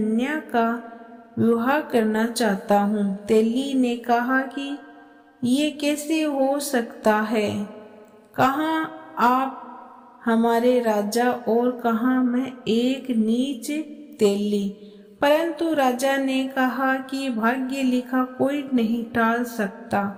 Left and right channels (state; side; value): identical; both; correlation 1.00